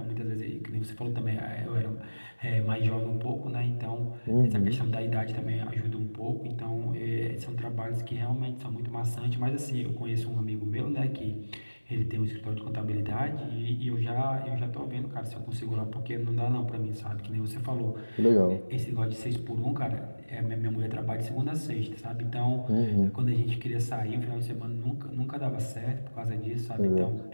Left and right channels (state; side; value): inverted; both; correlation -1.00